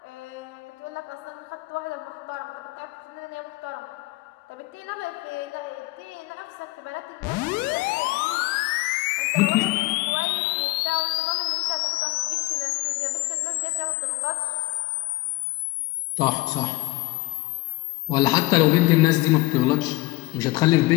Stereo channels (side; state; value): right; quieter; 21.1 dB